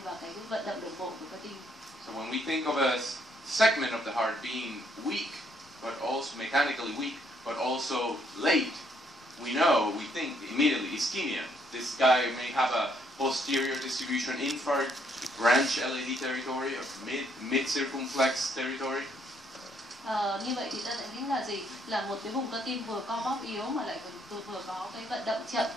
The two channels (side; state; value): both; normal; correlation 0.70